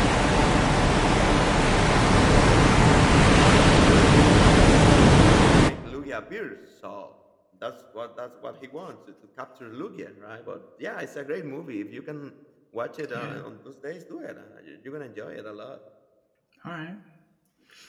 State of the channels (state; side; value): identical; both; correlation 1.00